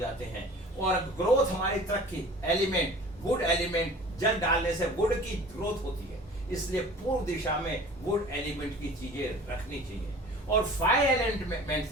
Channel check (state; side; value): normal; both; correlation 0.44